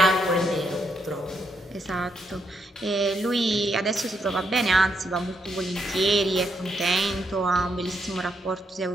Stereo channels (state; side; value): normal; both; correlation 0.78